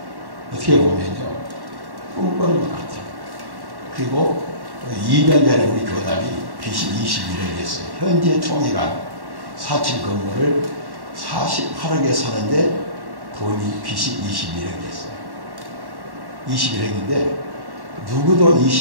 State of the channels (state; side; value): late; left; 1.1 ms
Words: 어떻게 보면요, 꿈꾸는 것 같아요. 그리고 2년 전에 우리 교단이 빚이 21억이었어요. 현재 총회가 4층 건물을 48억에 사는데 돈이 빚이 21억이었어요. 21억인데 누구도